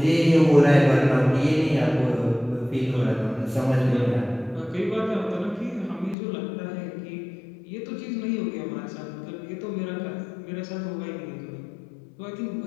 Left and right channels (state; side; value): drops out; right; at 6.2 s